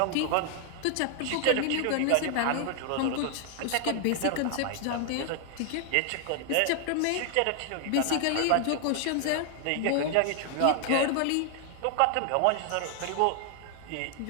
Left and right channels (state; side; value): different; both; correlation 0.00